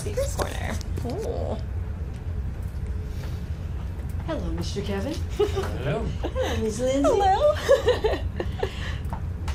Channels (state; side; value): identical; both; correlation 1.00